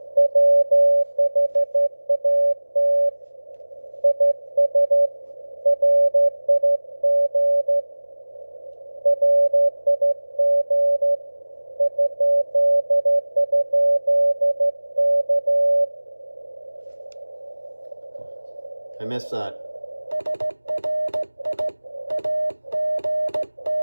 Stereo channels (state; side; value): inverted; both; correlation -1.00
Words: I missed that.